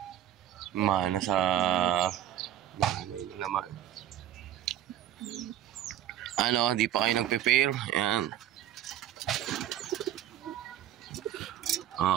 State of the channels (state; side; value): quieter; left; 11.6 dB